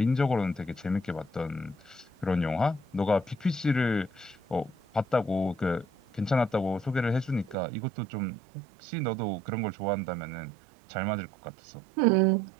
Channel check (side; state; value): left; drops out; at 7.6 s